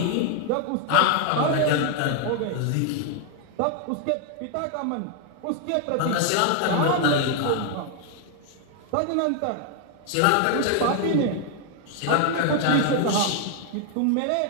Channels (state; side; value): different; both; correlation 0.00